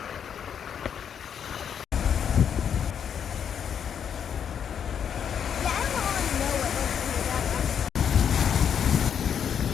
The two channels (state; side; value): quieter; right; 8.0 dB